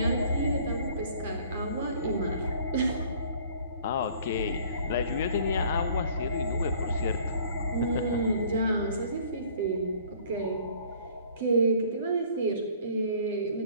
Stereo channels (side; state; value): both; inverted; correlation -0.54